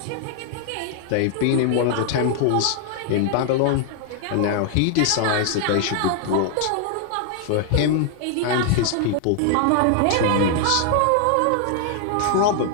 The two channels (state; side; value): different; both; correlation 0.00